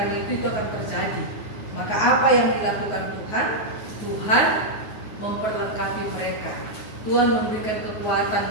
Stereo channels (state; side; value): late; right; 9.5 ms